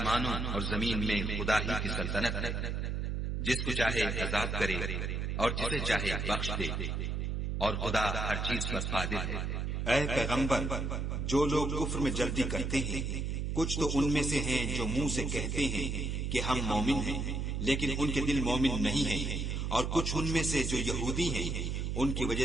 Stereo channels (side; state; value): right; noise; hum, 1 dB below the sound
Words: اور زمین میں خدا ہی کی سلطنت ہے، جس کو چاہے عذاب کرے اور جسے چاہے بخش دے، اور خدا ہر چیز پر قادر ہے۔ اے پیغمبر، جو لوگ کفر میں جلدی کرتے ہیں، کچھ تو ان میں سے ہیں جو منہ سے کہتے ہیں کہ ہم مومن ہیں، لیکن ان کے دل مومن نہیں ہیں، اور کچھ ان میں سے جو یہودی ہیں، ان کی وجہ